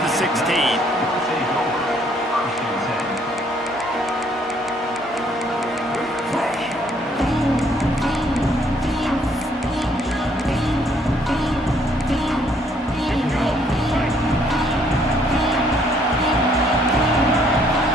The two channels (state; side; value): normal; both; correlation 0.66